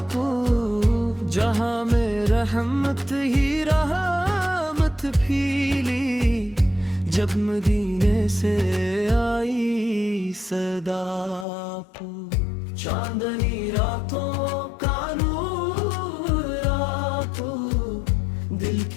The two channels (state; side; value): drops out; right; at 11.5 s